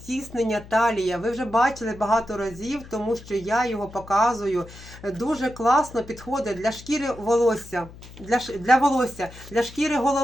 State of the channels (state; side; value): noise; left; hum, 18 dB below the sound